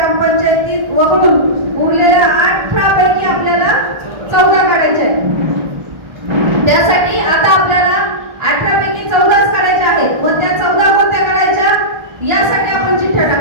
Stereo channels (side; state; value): left; late; 1.4 ms